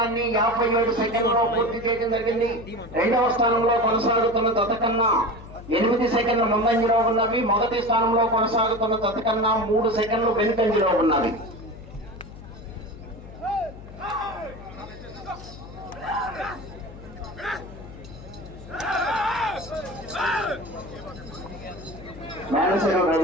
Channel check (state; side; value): noise; left; hum, 16 dB below the sound